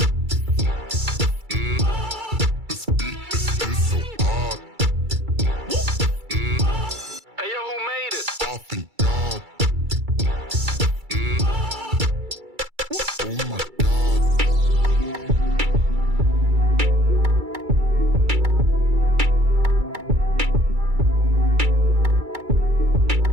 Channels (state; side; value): late; left; 2.3 ms